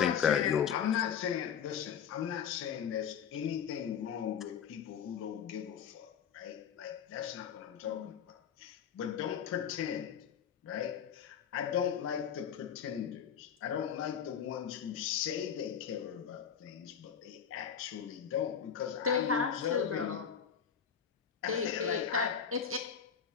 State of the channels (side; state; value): right; quieter; 7.8 dB